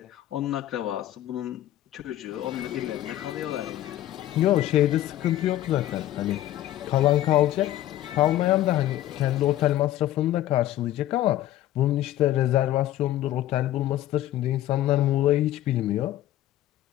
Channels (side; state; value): right; quieter; 13.6 dB